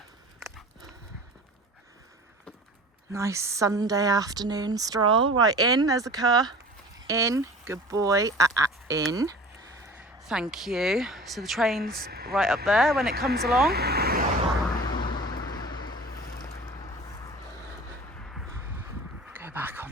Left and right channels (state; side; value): normal; both; correlation 0.40